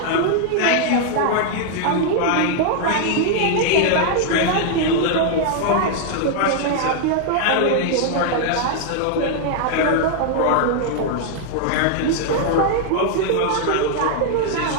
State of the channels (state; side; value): different; both; correlation 0.00